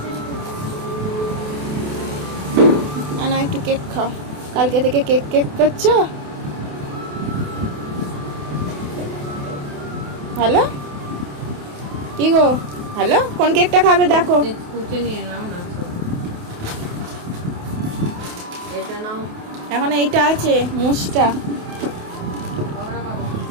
না একটু কেক খাও, কালকে থেকে কেক কেক করছো। হ্যালো কি গো, হ্যালো কোন কেকটা খাবে দেখো। এখন এইটা আছে মুসটা।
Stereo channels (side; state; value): left; late; 28 ms